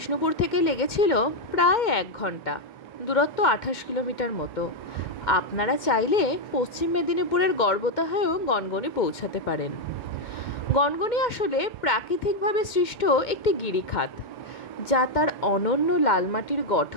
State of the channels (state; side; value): late; right; 2.1 ms